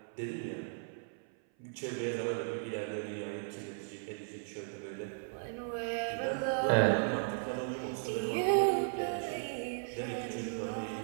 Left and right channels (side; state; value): left; silent; 54 dB below the other